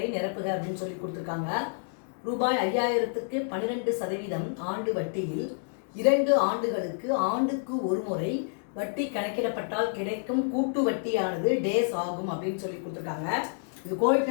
நிரப்புக அப்படின்னு சொல்லி கொடுத்துருக்காங்க. ரூபாய் 5000க்கு 12% ஆண்டு வட்டியில் 2 ஆண்டுகளுக்கு ஆண்டுக்கு ஒரு முறை வட்டி கணக்கிடப்பட்டால் கிடைக்கும் கூட்டு வட்டியானது டேஸ் ஆகும் அப்படின்னு சொல்லி கொடுத்துருக்காங்க. இது கோடிட்ட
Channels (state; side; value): silent; right; digital silence